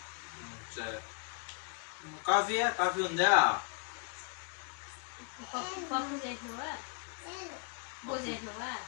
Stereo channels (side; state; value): right; quieter; 39.4 dB